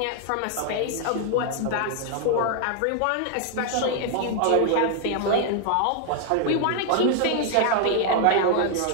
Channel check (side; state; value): both; different; correlation 0.00